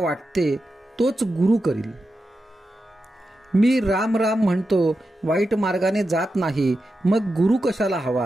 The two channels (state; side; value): normal; both; correlation 0.90